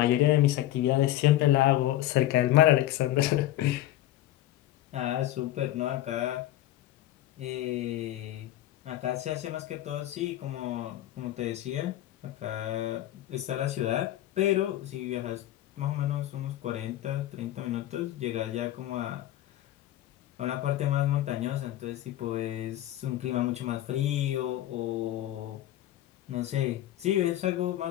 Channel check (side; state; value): right; quieter; 14.0 dB